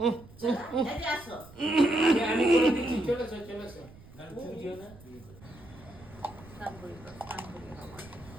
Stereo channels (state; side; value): noise; right; rumble, 21 dB below the sound